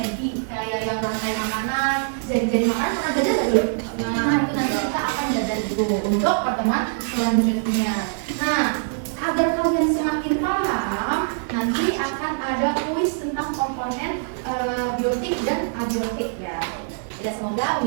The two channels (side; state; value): left; silent; digital silence